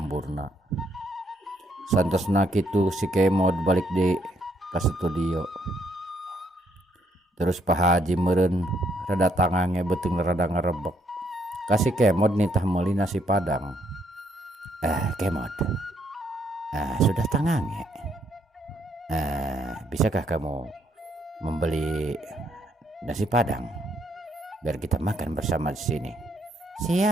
Santosna kitu si kemod balik di ka studio. Terus Pak Haji meureun rada tangange beuteung rada ngarebek. Kasih kemod nitah meuli nasi padang. Kemod. Sudah tangange. Bisakah kamu membeli nasi padang biar kita makan bersama di sini?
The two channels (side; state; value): both; normal; correlation 0.72